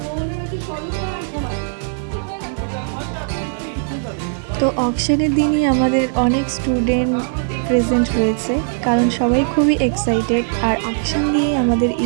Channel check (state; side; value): silent; left; digital silence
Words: তো অকশনের দিনই আমাদের অনেক স্টুডেন্ট প্রেজেন্ট রয়েছে, কারণ সবাই খুবই এক্সাইটেড। আর অকশন দিয়ে আমাদের